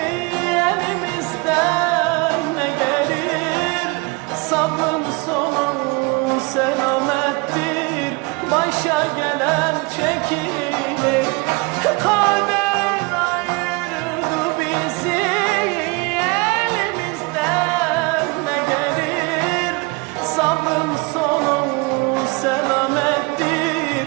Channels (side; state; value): left; quieter; 27.3 dB